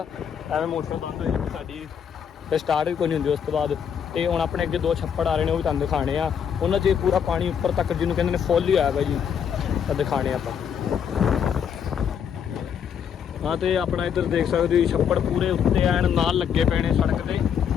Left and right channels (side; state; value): right; quieter; 7.9 dB